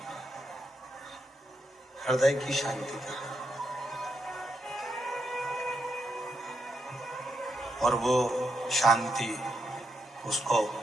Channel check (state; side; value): normal; both; correlation 0.81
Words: हृदय की शांति की कमी। और वो शांति उसको,